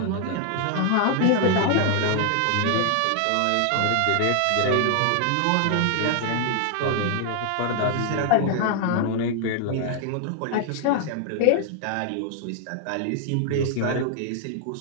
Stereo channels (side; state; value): both; different; correlation 0.00